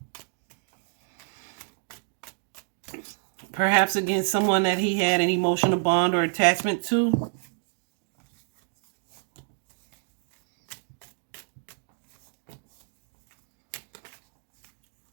Perhaps against someone that he had an emotional bond or attachment to.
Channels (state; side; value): silent; left; 59 dB below the other